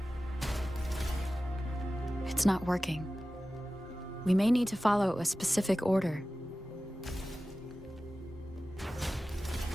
It's not working. We may need to follow a specific order.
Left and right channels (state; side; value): normal; both; correlation 0.95